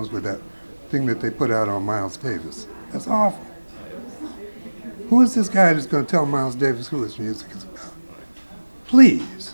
with that thing that they put out on Miles Davis. That's awful. Who is this guy that's going to tell Miles Davis who his music is about?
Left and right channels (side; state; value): both; inverted; correlation -1.00